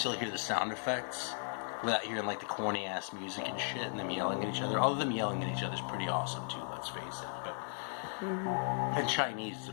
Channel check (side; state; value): right; silent; 54 dB below the other